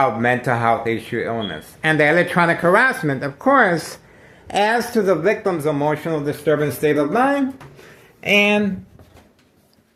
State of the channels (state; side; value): identical; both; correlation 1.00